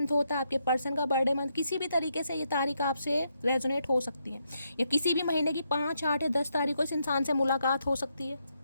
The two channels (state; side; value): inverted; both; correlation -0.79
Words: होता है, आपके पर्सन का बर्थडे मंथ, किसी भी तरीके से ये तारीख आपसे रेजोनेट हो सकती है, या किसी भी महीने की 5, 8 या 10 तारीख को इस इंसान से मुलाकात हो सकती है।